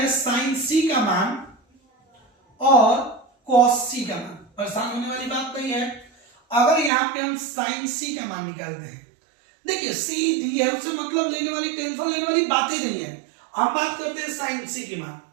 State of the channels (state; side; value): drops out; left; at 6.9 s